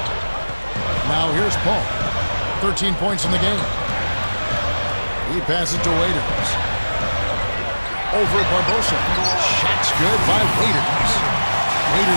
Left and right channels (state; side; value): inverted; both; correlation -1.00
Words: Now here's Paul. 13 points in the game. He passes to Waiters. Over Barbosa. Shot's good by Waiters.